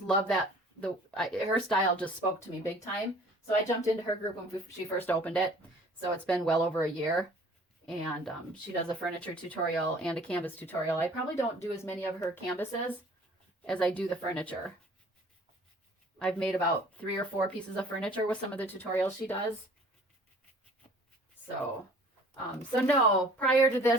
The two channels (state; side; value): normal; both; correlation 0.51